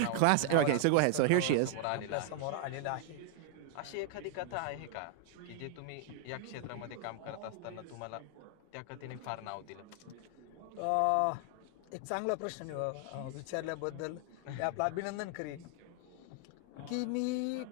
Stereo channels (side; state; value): both; different; correlation 0.00